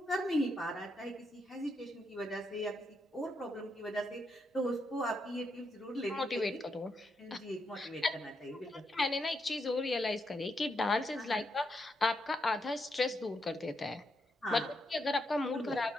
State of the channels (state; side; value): normal; both; correlation 0.81